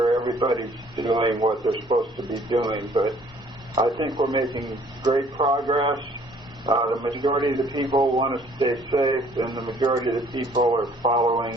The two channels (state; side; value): normal; both; correlation 0.58